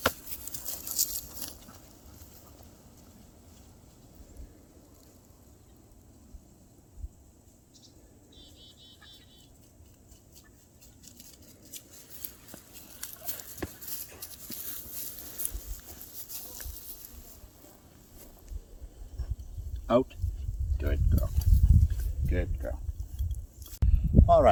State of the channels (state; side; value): identical; both; correlation 1.00